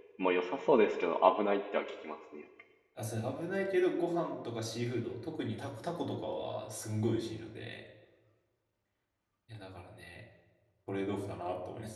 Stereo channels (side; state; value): both; identical; correlation 1.00